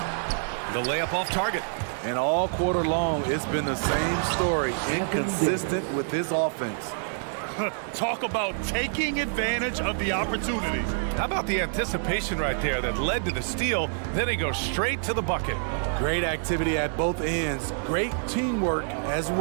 The layup off target. And all quarter long, it's been the same story. Inconsistent with his offense. Talk about taking advantage of the opportunities. How about the anticipation right there that led to the steal? Then he goes straight to the bucket. Great activity at both ends. Great teamwork as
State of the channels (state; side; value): silent; left; digital silence